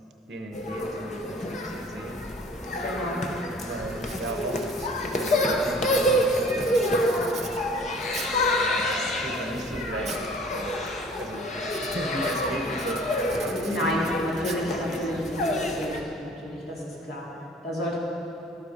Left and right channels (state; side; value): normal; both; correlation 0.49